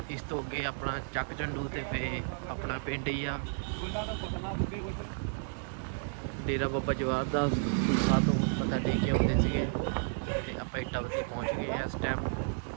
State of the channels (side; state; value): left; silent; digital silence